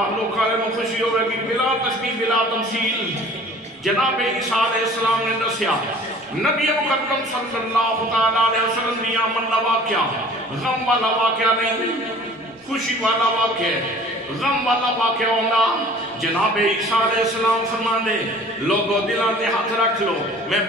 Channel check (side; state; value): both; normal; correlation 0.48